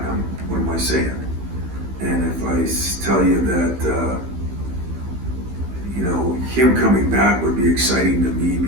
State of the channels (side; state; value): left; late; 15 ms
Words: what am I saying? And if I tell you that, him coming back would be exciting to me